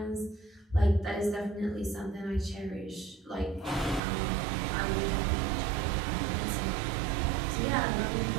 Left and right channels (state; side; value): drops out; left; at 4.0 s